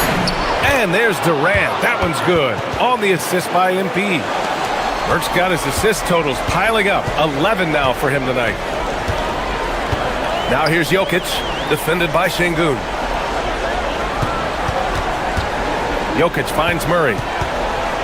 And there's Durant. That one's good. On the assist by MP. Merck's got his assist totals piling up. 11 now for him tonight. Now here's Jokic, defended by Şengün. Jokic finds Murray.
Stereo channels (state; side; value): identical; both; correlation 1.00